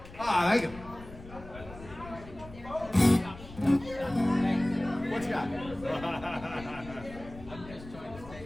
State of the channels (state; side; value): noise; left; rumble, 16 dB below the sound